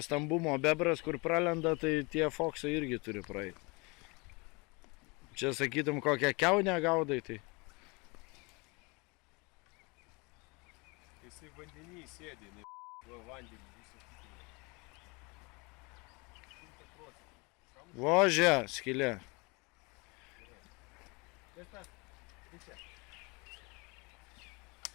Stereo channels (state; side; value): quieter; right; 28.1 dB